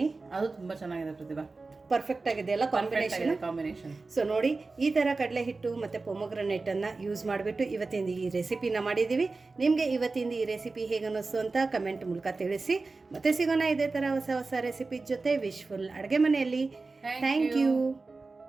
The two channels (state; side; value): quieter; left; 3.7 dB